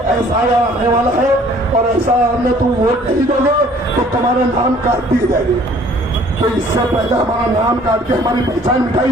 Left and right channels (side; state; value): both; normal; correlation 0.56